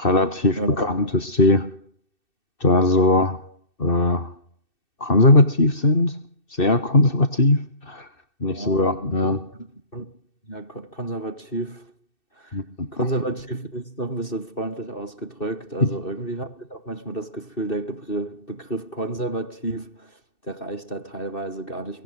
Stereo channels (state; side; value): late; right; 2.6 ms